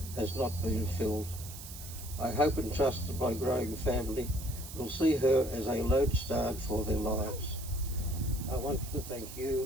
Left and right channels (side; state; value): right; noise; hiss, 12 dB below the sound